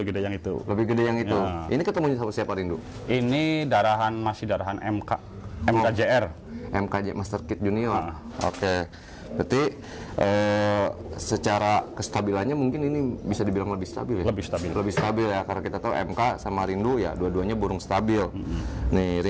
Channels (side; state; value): both; identical; correlation 1.00